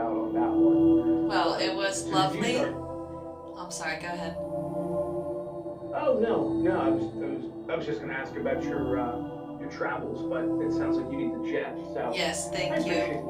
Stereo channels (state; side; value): identical; both; correlation 1.00